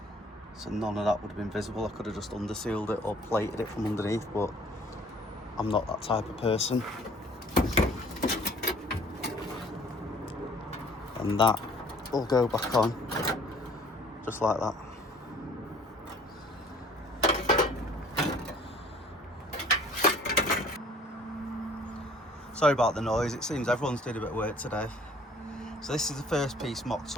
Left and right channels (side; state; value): both; normal; correlation 0.54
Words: So none of that would have been visible. I could have just undersealed it or plated it from underneath, but I'm not that type of person. And that will go back on, just like that. Sorry about the noise, it seems everyone's doing a bit of work today. So this is the first piece mocked